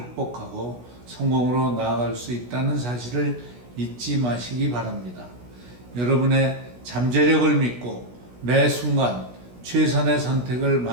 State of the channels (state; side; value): late; left; 16 ms